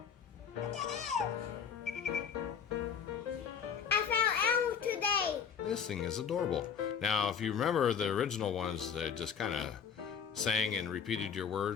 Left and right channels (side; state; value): right; quieter; 7.2 dB